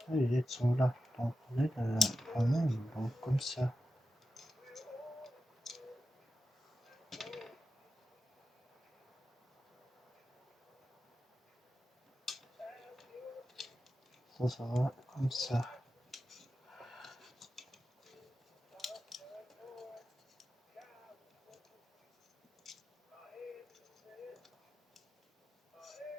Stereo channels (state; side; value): normal; both; correlation 0.91